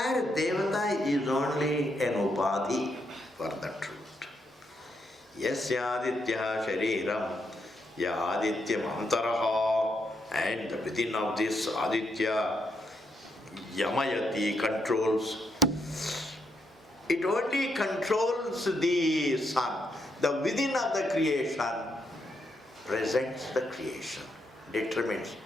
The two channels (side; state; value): both; normal; correlation 0.79